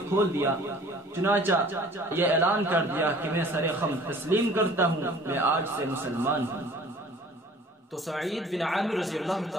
کھول دیا۔ چنانچہ یہ اعلان کر دیا کہ میں سر خم تسلیم کرتا ہوں، میں آج سے مسلمان ہوں۔ تو سعید بن عامر رضی اللہ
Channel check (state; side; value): normal; both; correlation 0.50